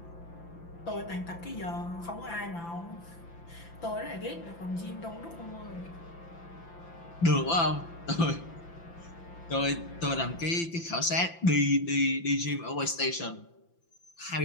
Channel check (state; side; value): late; right; 5.9 ms